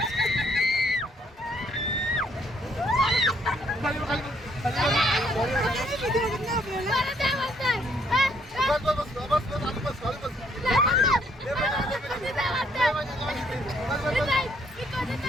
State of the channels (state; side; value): normal; both; correlation 0.68